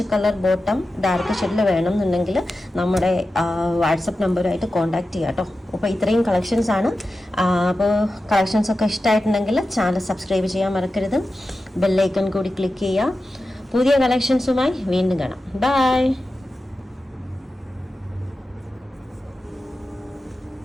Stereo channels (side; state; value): both; normal; correlation 0.93